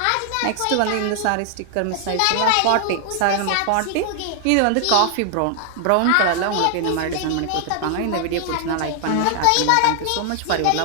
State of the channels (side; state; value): both; different; correlation 0.00